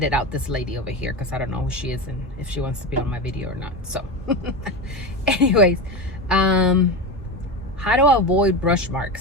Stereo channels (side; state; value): both; normal; correlation 0.20